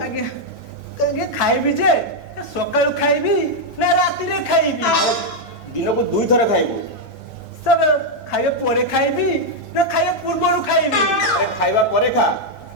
ଆଜ୍ଞା ଆଜ୍ଞା ଖାଇବି ଯେ ସକାଳୁ ଖାଇବି ନା ରାତିରେ ଖାଇବି ଦିନକୁ 2 ଥର ଖାଇବୁ ସାର୍ ଖାଇବା ପରେ ଖାଇବି ନା ଖାଇବା ପୂର୍ବରୁ ଖାଇବି ଆରେ ଖାଇବା ପରେ ଖା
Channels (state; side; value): late; left; 16 ms